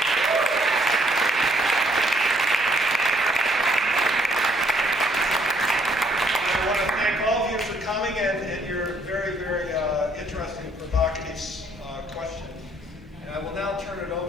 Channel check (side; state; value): both; normal; correlation 0.67